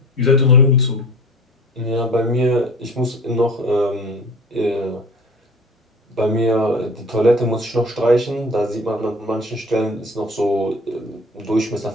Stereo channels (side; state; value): both; normal; correlation 0.42